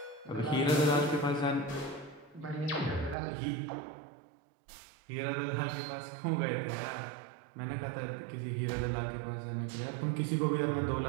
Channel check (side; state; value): left; drops out; at 3.2 s